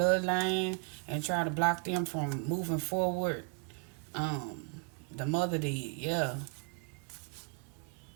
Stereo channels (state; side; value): quieter; left; 33.7 dB